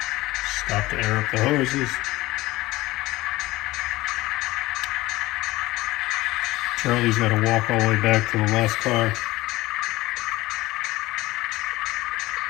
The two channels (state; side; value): quieter; right; 18.7 dB